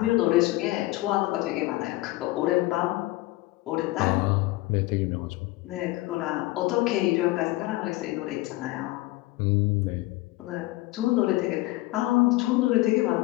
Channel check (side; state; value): right; quieter; 19.4 dB